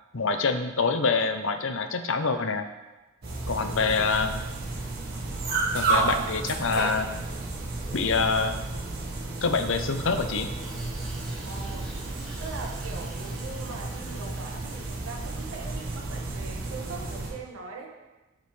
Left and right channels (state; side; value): normal; both; correlation 0.01